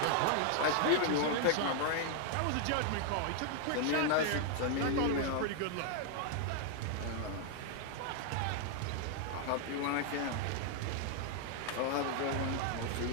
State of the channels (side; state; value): both; different; correlation 0.00